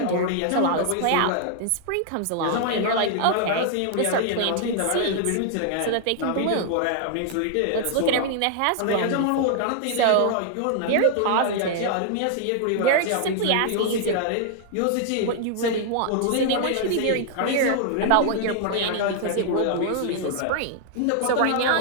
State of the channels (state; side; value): different; both; correlation -0.01